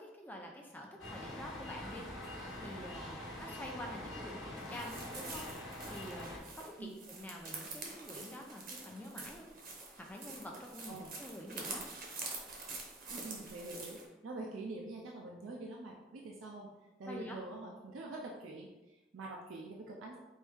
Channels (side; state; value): both; normal; correlation 0.42